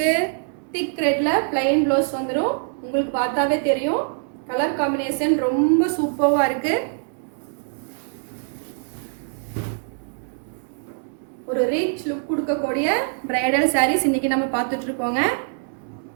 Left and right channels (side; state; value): left; silent; digital silence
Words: திக் ரெட்ல பிளைன் ப்ளவுஸ் வந்துடும். உங்களுக்கு பார்த்தாவே தெரியும். கலர் காம்பினேஷன் ரொம்ப சூப்பராக இருக்கு. ஒரு ரிச் லுக் கொடுக்கக்கூடிய பிரைடல் சாரீஸ் இன்னைக்கு நம்ம பார்த்துட்டு இருக்கோங்க.